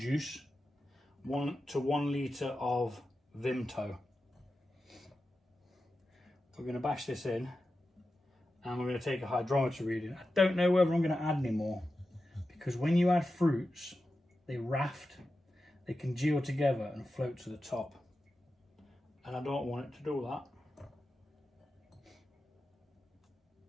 1 to 1 litre of Vimto. We're going to bash this in, and we're going to take a hydrometer reading. I don't know whether I'm going to add any more, because when you add fruits, they raft, they congeal together and float to the top. And I don't want it to do that.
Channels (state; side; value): normal; both; correlation 0.92